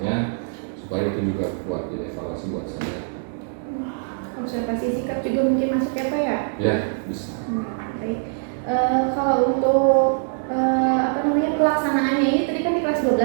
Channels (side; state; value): left; silent; digital silence